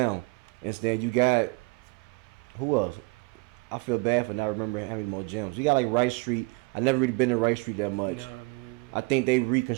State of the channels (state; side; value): quieter; left; 26.8 dB